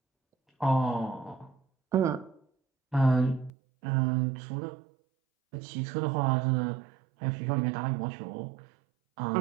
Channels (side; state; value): left; drops out; at 3.5 s